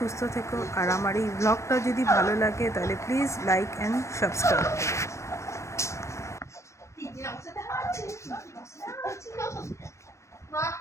থেকো। আর আমার এই ব্লগটা যদি ভালো লাগে তাহলে প্লিজ লাইক অ্যান্ড সাবস্ক্রাইব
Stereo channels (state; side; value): late; right; 0.14 ms